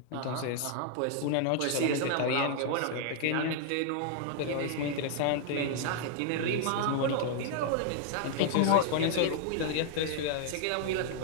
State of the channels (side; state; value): both; different; correlation -0.01